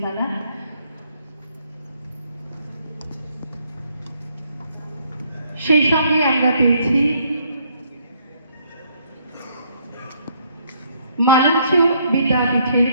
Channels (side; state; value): both; inverted; correlation -0.68